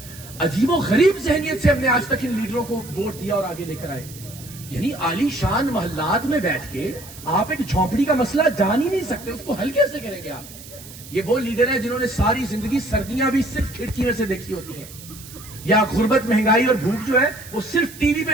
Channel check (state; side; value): noise; right; hiss, 17 dB below the sound